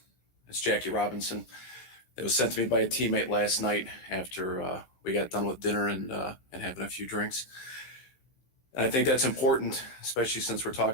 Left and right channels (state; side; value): late; right; 16 ms